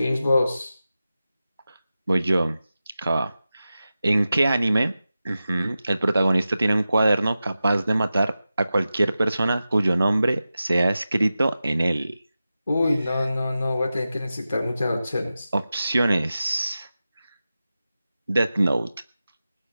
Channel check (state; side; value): inverted; both; correlation -0.93